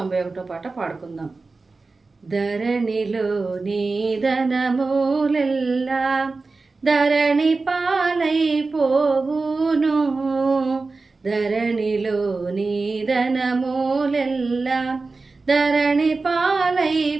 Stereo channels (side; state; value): left; quieter; 3.8 dB